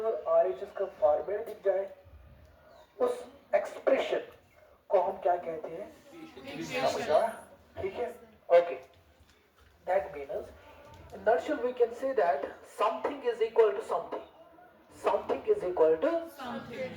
RHS का फॉर्मेट दिख जाए, उस एक्सप्रेशन को हम क्या कहते हैं? समझा? ठीक है? Okay. That means in nutshell we can say that something is equal to something. Something is equal to Something.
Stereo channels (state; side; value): identical; both; correlation 1.00